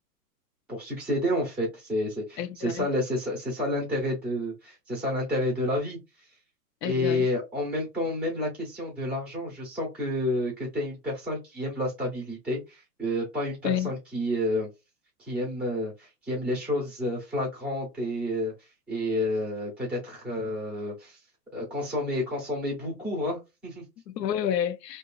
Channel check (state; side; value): normal; both; correlation 0.32